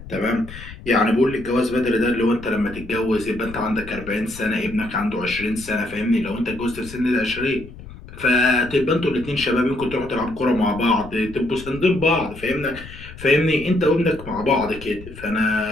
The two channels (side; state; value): left; noise; rumble, 15 dB below the sound